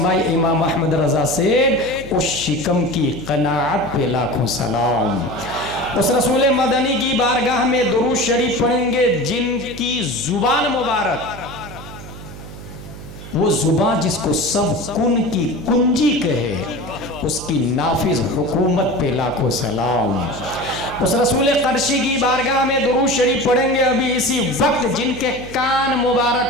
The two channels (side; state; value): right; noise; hum, 14 dB below the sound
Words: इमाम अहमद रज़ा सेड, उस शिकम की कनाअत पे लाखों सलाम। उस रसूल मदनी की बारगाह में दुरूद शरीफ पढ़ेंगे जिनकी जुबान मुबारक, वो जुबान जिसको सब कुन की कुंजी कहे, उसकी नाफिज हुकूमत पे लाखों सलाम। उस रसूल क़रशी की बारगाह में दुरूद शरीफ पढ़ेंगे अभी इसी वक्त जिनके कान